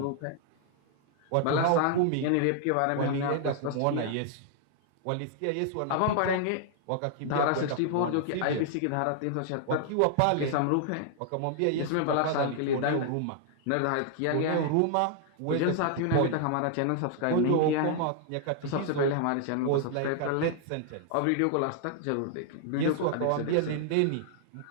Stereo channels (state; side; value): different; both; correlation 0.00